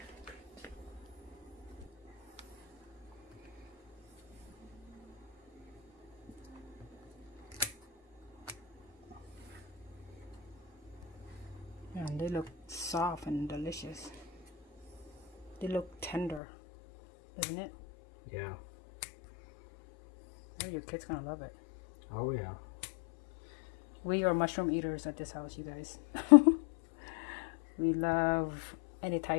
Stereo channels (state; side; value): drops out; right; at 16.4 s